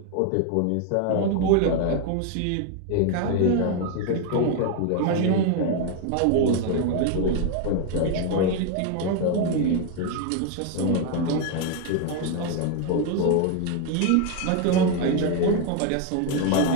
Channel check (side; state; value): both; different; correlation 0.01